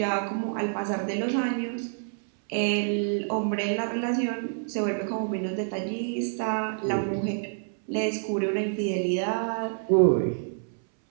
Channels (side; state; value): left; silent; 60 dB below the other